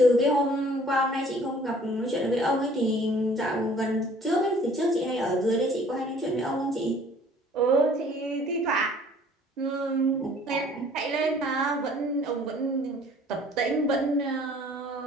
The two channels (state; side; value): normal; both; correlation 0.55